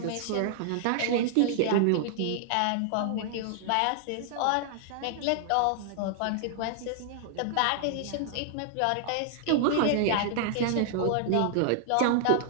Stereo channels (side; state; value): both; different; correlation -0.01